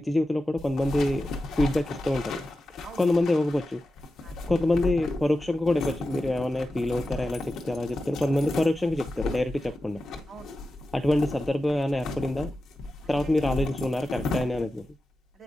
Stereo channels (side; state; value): both; normal; correlation 0.92